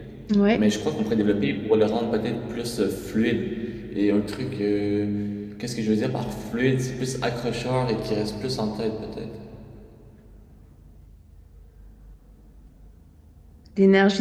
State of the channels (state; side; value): identical; both; correlation 1.00